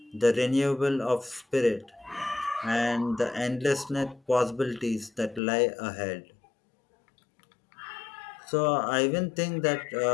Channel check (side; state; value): right; drops out; at 5.4 s